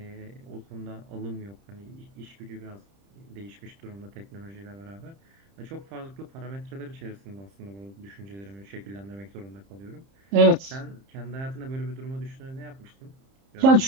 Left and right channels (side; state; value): left; late; 30 ms